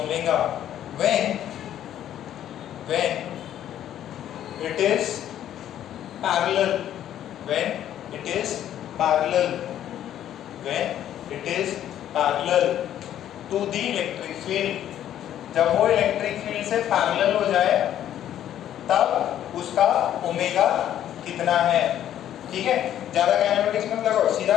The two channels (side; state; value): right; quieter; 11.2 dB